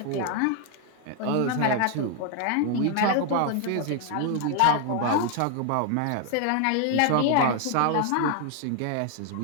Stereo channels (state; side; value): different; both; correlation 0.01